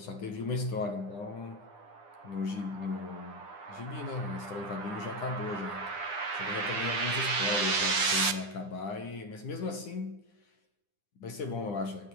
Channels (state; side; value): late; right; 9.9 ms